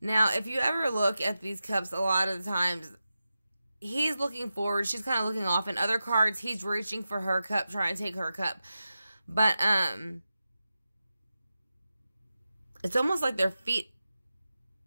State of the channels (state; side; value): inverted; both; correlation -0.92